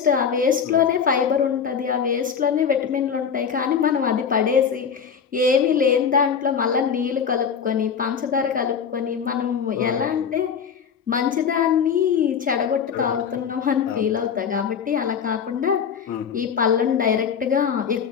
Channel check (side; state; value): right; quieter; 7.0 dB